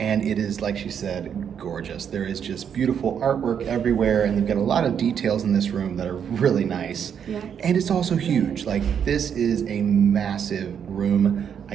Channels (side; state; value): left; quieter; 8.0 dB